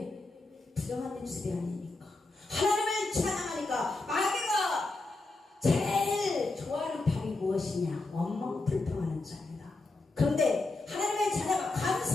부정한 입술이 아니니까. 하나님을 찬양하니까. 마귀가 제일 좋아하는 법이 무엇이냐? 원망불평하는 자입니다. 그런데 하나님의 자녀가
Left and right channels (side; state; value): right; quieter; 3.2 dB